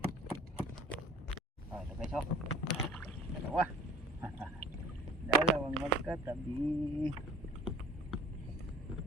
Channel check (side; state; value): both; normal; correlation 0.48